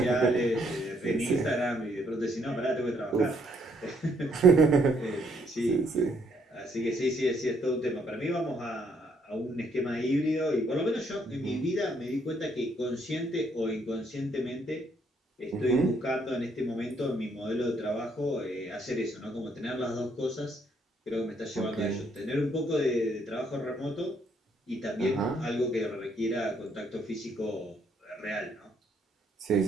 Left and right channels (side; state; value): both; normal; correlation 0.70